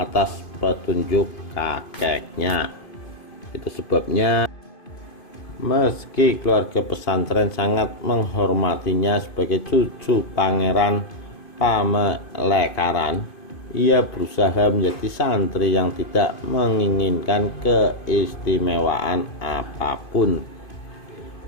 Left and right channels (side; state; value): right; late; 2.5 ms